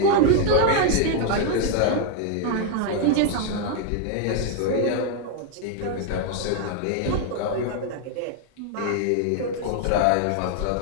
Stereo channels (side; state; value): both; different; correlation 0.01